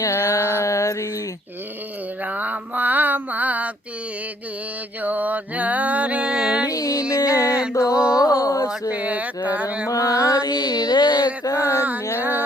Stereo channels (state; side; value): normal; both; correlation 0.65